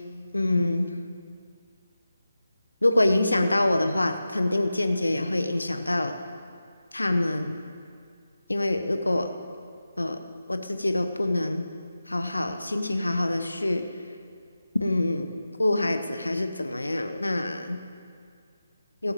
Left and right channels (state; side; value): inverted; both; correlation -0.94